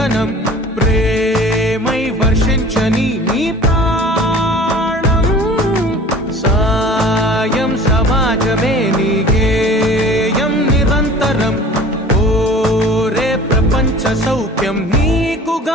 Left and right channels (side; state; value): both; normal; correlation 0.44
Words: ప్రేమై వర్షించని నీ ప్రాణం. సాయం సమాజమే నీ గేయం నిరంతరం. ఓరే ప్రపంచ సౌఖ్యం